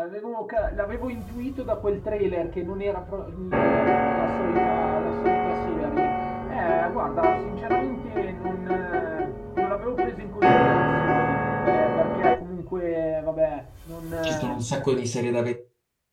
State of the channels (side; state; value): both; identical; correlation 1.00